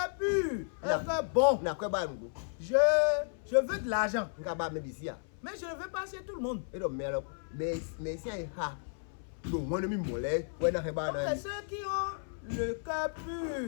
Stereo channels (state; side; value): silent; right; 55 dB below the other